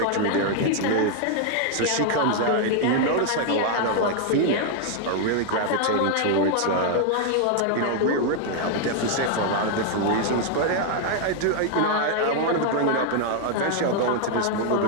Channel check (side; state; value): both; different; correlation 0.00